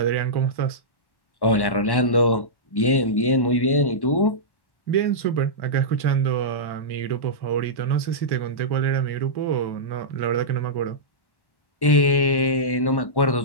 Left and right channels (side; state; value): right; late; 1.1 ms